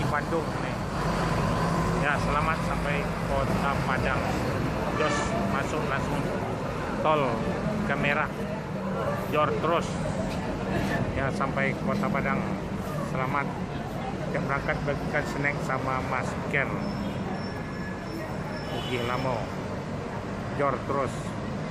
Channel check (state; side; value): identical; both; correlation 1.00